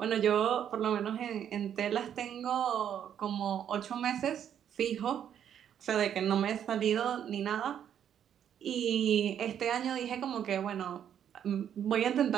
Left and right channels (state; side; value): quieter; left; 9.3 dB